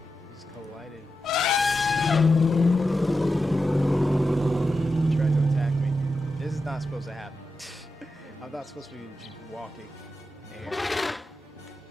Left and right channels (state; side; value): normal; both; correlation 0.89